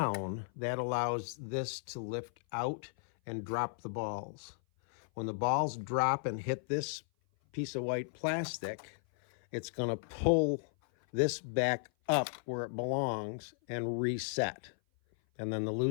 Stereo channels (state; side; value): silent; right; 54 dB below the other